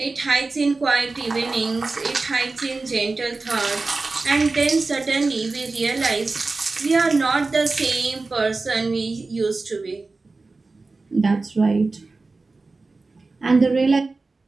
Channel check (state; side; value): quieter; left; 3.7 dB